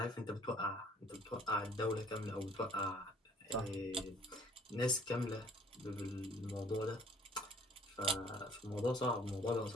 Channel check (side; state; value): both; normal; correlation 0.56